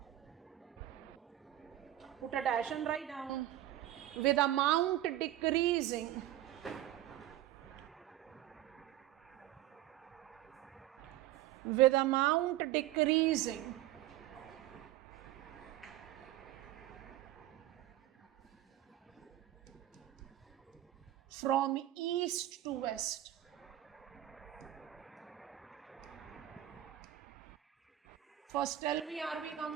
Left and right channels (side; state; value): left; quieter; 13.6 dB